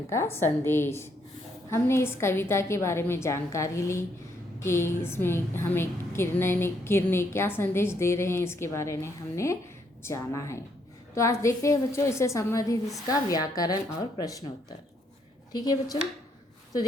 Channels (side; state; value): both; normal; correlation 0.73